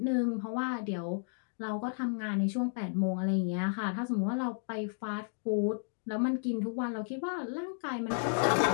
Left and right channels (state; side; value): silent; right; digital silence